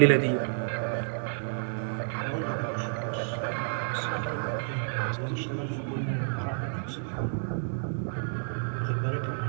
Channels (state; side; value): silent; left; digital silence